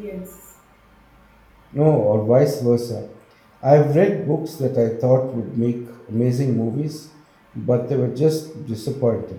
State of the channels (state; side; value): identical; both; correlation 1.00